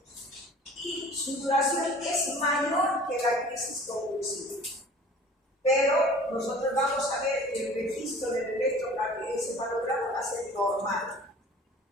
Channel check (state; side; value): normal; both; correlation 0.46